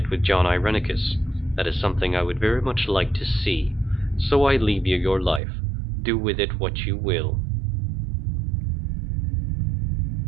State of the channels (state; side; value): drops out; left; at 5.4 s